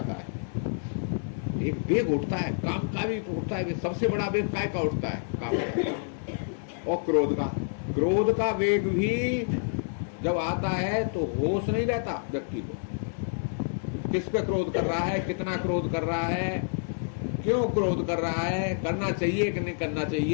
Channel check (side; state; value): right; silent; 59 dB below the other